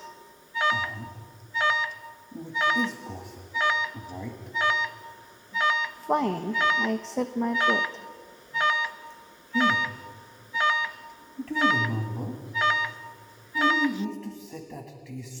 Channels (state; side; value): identical; both; correlation 1.00